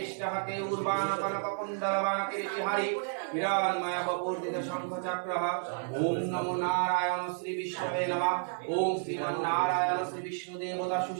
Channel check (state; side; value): silent; left; digital silence